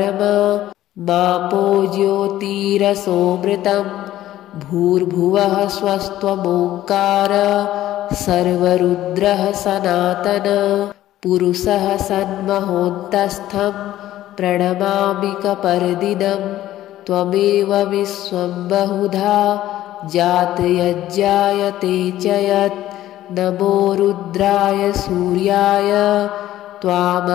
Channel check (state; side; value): quieter; right; 13.8 dB